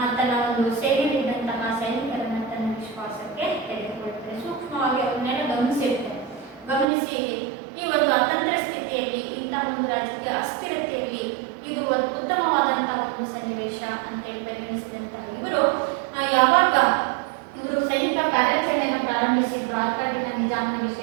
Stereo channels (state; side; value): drops out; left; at 6.9 s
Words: ತನ್ನ ಒಂದು ಸೇನೆಯಲ್ಲಿದ್ದಂತಹ ಸೈನಿಕರನ್ನ ತನ್ನ ವಿಶ್ವಾಸಕ್ಕೆ ತೆಗೆದುಕೊಳ್ತಾರೆ. ಸೂಕ್ಷ್ಮವಾಗಿ ಅವನ್ನೆಲ್ಲ ಗಮನಿಸಿ ಈ ಒಂದು ಅತಂತ್ರ ಸ್ಥಿತಿಯಲ್ಲಿ ಇಂತಹ ಒಂದು ರಾಜಕೀಯ ಅಸ್ಥಿರತೆಯಲ್ಲಿ ಇದು ಉತ್ತಮವಾದಂತಹ ಒಂದು ಸನ್ನಿವೇಶ ಅಂತೇಳಿ ಪರಿಗಣಿಸಿದಂತಹ ಇವರು ಯಾವಾಗ ಇವರು ಸೈನಿಕ ಕಾರ್ಯಾಚರಣೆಯನ್ನು ಪ್ರಾರಂಭಿಸಿದ್ರು ಆರ್ಕಾಟಿನ ನಿಜಾಮನ